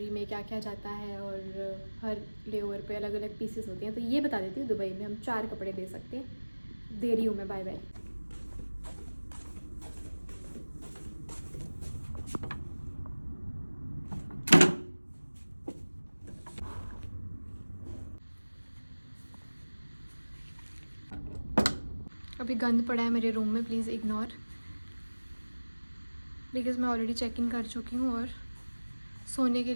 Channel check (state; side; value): inverted; both; correlation -1.00